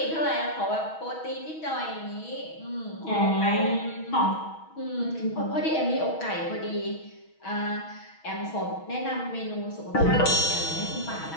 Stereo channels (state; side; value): late; right; 6.3 ms